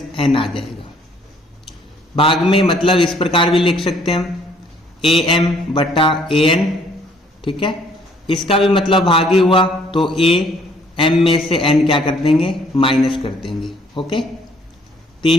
n आ जाएगा। भाग में मतलब इस प्रकार भी लिख सकते हैं हम am बटा an। ठीक है। इसका भी मतलब भाग ही हुआ, तो a m में से n क्या कर देंगे, माइनस कर देंगे। ओके।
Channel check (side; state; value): both; normal; correlation 0.62